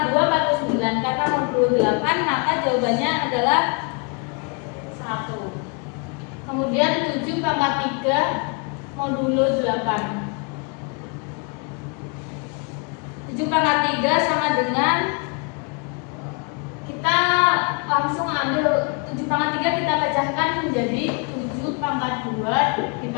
2 49, karena modulo 8 maka jawabannya adalah 1. Kemudian 7 pangkat 3 modulo 8. 7 pangkat 3 sama dengan, kita langsung ambil 7 pangkat 3 kita pecahkan menjadi 7 pangkat 2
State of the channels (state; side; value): quieter; right; 35.1 dB